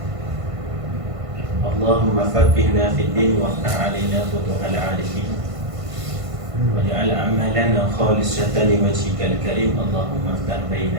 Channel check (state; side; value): late; left; 1.5 ms